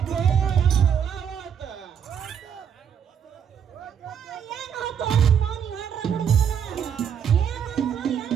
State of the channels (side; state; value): left; quieter; 8.0 dB